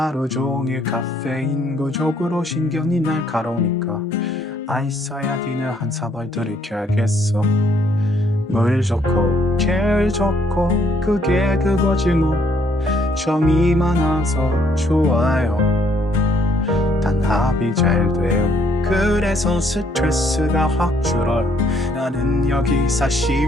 종일 카페인 부족으로 신경이 날카로우니까 아이스아야디는 한 사발 들이켜야겠어. 물 좋고 길 좋고 그게 그거지 뭐. 정이 많아서 좋아요. 단 합이 잘 돼요. 그래서 스트레스가 확 줄어요. 나는 여기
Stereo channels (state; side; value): normal; both; correlation 0.68